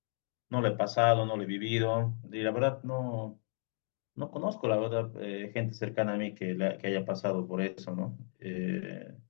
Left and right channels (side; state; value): right; silent; 55 dB below the other